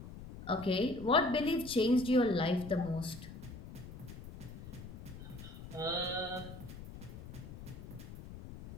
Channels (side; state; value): left; noise; rumble, 13 dB below the sound